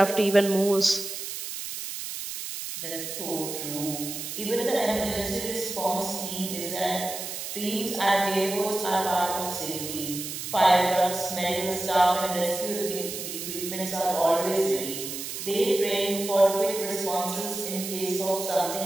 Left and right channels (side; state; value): right; noise; hiss, 7 dB below the sound